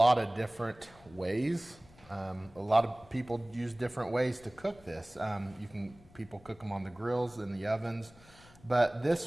of different ways. A lot of people use different ways to cook this. People cook them on the grills, in the ovens. But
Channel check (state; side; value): noise; left; rumble, 25 dB below the sound